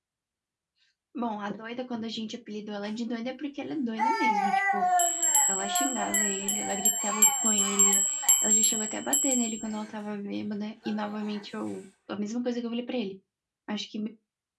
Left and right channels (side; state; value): both; identical; correlation 1.00